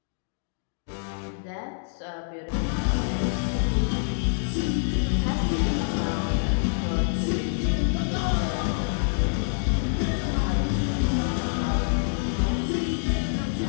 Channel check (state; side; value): silent; right; digital silence